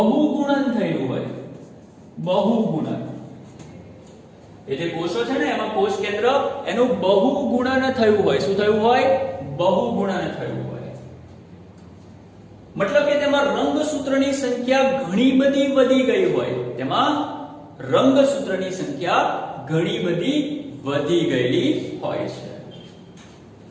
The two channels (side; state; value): both; identical; correlation 1.00